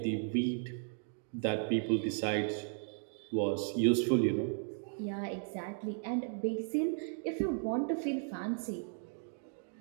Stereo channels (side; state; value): left; silent; 54 dB below the other